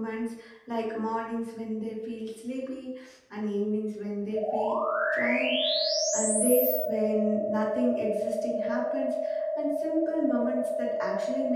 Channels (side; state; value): both; identical; correlation 1.00